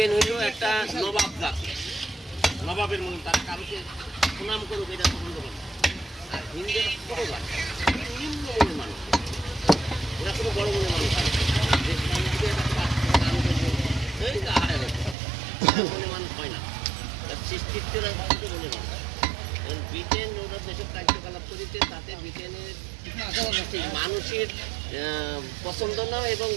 হইল একটা নবাব জাতি, নবাবের মনে তারা কারোকে সুনাম করুক এটা পছন্দ করে। আর হিন্দুরা ছোট জাতি, নিম্ন মনের মানুষ, ওরা কোনো বড় মনের মানুষ মনে মানুষ হয় না, সৃষ্টিত্বের মনে মানুষ। ব্রিটেন ওরা যেসব কার্যকলাপ করেছে তাতে ব্রিটেনের মানুষের পছন্দ না এবং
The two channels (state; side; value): drops out; left; at 15.2 s